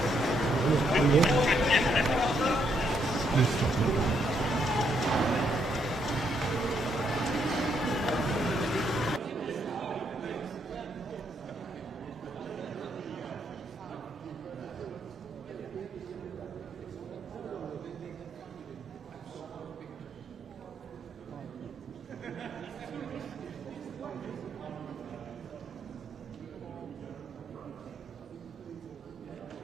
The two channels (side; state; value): both; normal; correlation 0.75